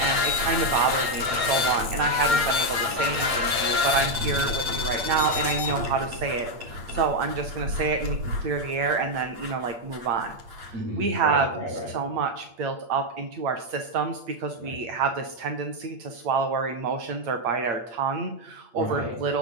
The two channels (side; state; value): left; late; 8.6 ms